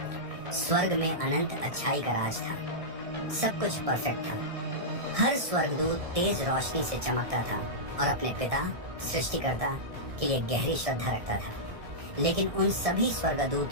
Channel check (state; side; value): late; left; 1.6 ms